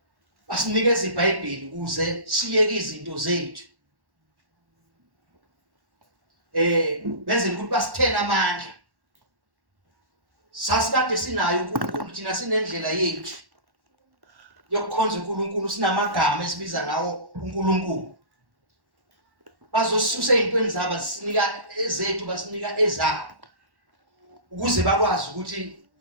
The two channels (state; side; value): late; left; 1.1 ms